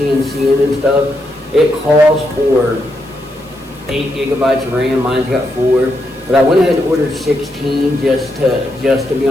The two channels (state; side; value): noise; left; hiss, 27 dB below the sound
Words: and stuff, it calls for 8 gigabytes of RAM. Mine's got 4, but I went ahead and ordered 16 just to be